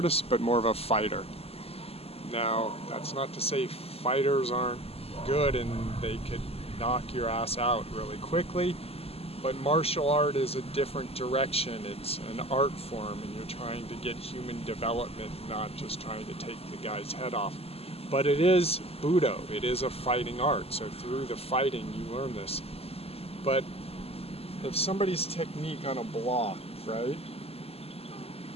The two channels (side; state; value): right; late; 0.29 ms